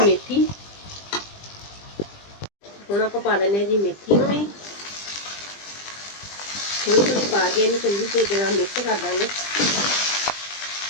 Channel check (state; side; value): late; right; 20 ms